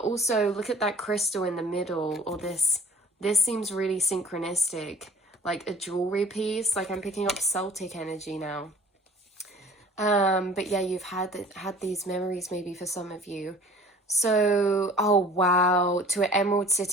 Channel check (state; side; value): normal; both; correlation 0.49